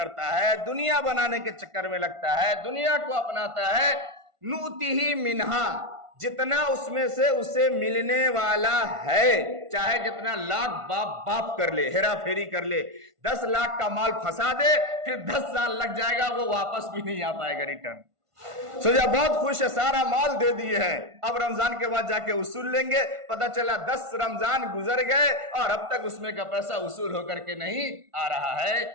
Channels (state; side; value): late; left; 1.5 ms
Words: ہے، دنیا بنانے کے چکر میں لگتا ہے، دنیا کو اپناتا ہے، نؤتیہ منہا، جتنا اس میں سے اسے ملنے والا ہے، چاہے جتنا لاکھ باپ کر لے، ہیرا پھیری کر لے، 10 لاکھ کا مال پھنسا دے، پھر 10 سال لگ جائے گا، وہ واپس بھی نہیں آ پائے گا ریٹرن۔ سوچا بہت خوش ہے، سارا مال دے دیے ہیں، اب رمضان کے بعد جا کے وصول لیں گے، پتہ چلا 10 رمضان گزر گئے اور اب تک اس میں کا پیسہ وصول ہو کر کے نہیں آ رہا ہے۔